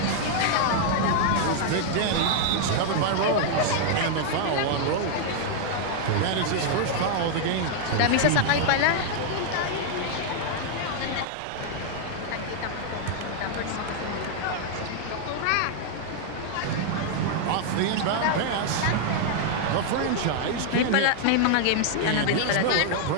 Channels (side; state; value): both; different; correlation 0.00